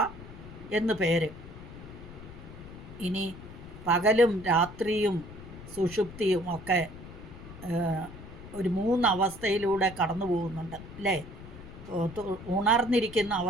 എന്ന് പേര്. ഇനി പകലും രാത്രിയും സുഷുപ്തിയും ഒക്കെ ഒരു 3 അവസ്ഥയിലൂടെ കടന്നു പോകുന്നുണ്ട് അല്ലേ. ഉണർന്നിരിക്കുന്ന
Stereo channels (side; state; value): left; noise; rumble, 14 dB below the sound